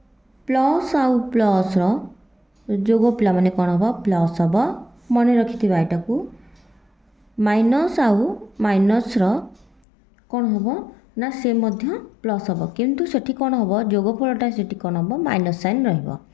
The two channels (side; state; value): right; drops out; at 9.8 s